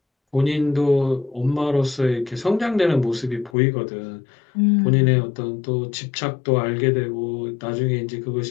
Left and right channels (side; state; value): right; drops out; at 3.6 s